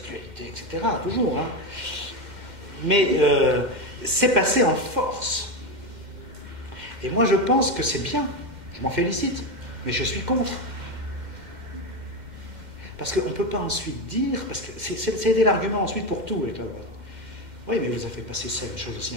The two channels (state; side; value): late; left; 2.1 ms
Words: etc. Toujours, Mais c'est passé en force. Et moi, je pense que c'est bien. Je m'en félicite. Mais je suis contre. Parce qu'on ne peut pas ensuite dire... Parce que c'est l'argument ensuite pour tout avec la droite. Oui, mais vous avez passé ça, une chose aussi